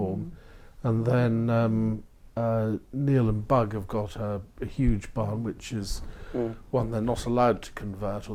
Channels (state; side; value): identical; both; correlation 1.00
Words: And then Neil and Bug have got a huge barn, which is one they're not allowed to convert,